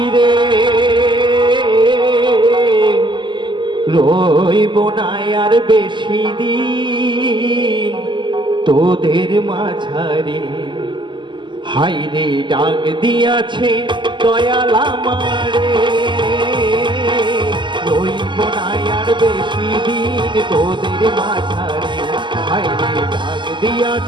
রইব না আর বেশি দিন তোদের মাঝারে। হাইরে ডাক দিয়াছে দয়াল আমারে, রইব না আর বেশি দিন তোদের মাঝারে। হাইরে ডাক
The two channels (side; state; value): left; late; 0.23 ms